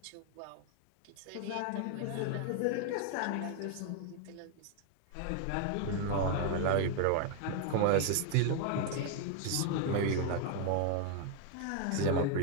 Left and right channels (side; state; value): both; different; correlation 0.00